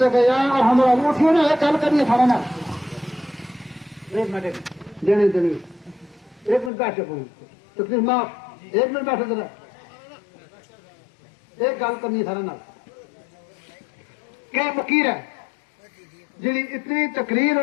کہ یا ارحم الراحمین اٹھیے نا ایک گل کریے کھانا نا ایک منٹ دینے ایک منٹ بیٹھے تکلیف معاف ایک منٹ بیٹھے ذرا ایک گل کرنی سارا نا کہ فقیر ہے جی اتنی تقریر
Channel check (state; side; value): drops out; right; at 6.7 s